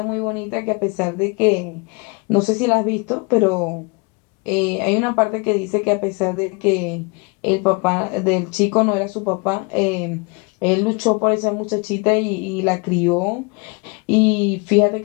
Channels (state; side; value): quieter; right; 30.5 dB